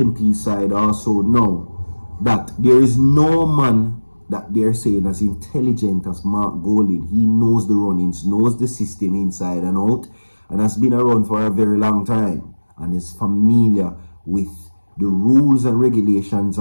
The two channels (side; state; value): both; inverted; correlation -1.00